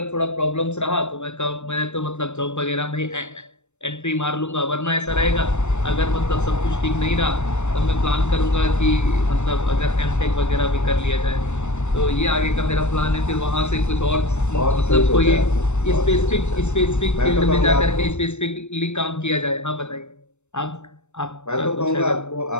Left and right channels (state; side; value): late; right; 0.83 ms